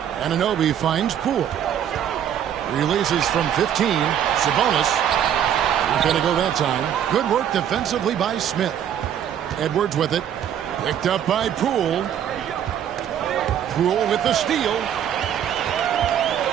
Anunoby finds Poole. Releases from 15. Sabonis. Not going to go that time. Good work defensively by Smith. Edwards with it. Picked up by Poole. Poole with the steal.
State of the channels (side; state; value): left; quieter; 9.6 dB